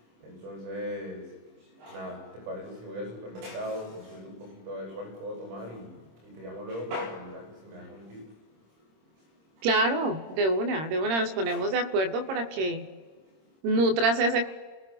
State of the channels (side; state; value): left; late; 26 ms